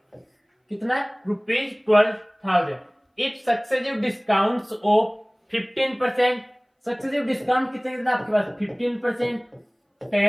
कितना rupees 12,000। If successive discounts of 15%, successive discount कितना आपके पास 15%,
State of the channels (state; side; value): identical; both; correlation 1.00